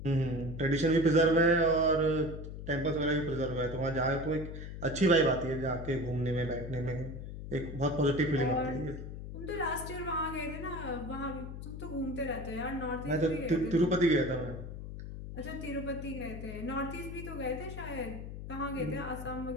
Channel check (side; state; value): left; noise; hum, 9 dB below the sound